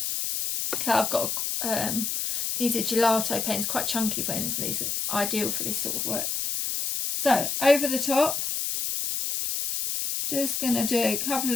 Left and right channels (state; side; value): noise; left; hiss, 1 dB below the sound